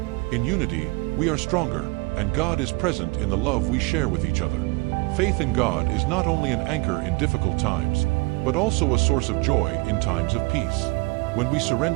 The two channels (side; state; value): left; quieter; 26.3 dB